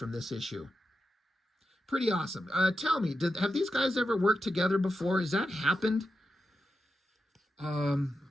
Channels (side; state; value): both; normal; correlation 0.89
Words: this issue? Pretty awesome. Tell me, have these guys ever worked together before? Has that happened?